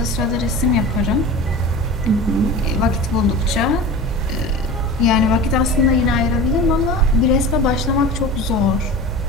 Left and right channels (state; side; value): normal; both; correlation 0.33